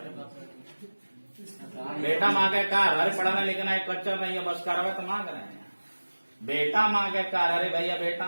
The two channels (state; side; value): inverted; both; correlation -1.00